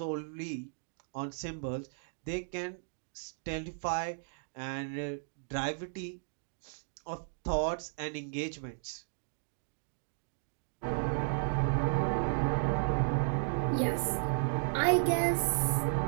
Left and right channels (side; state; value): left; silent; digital silence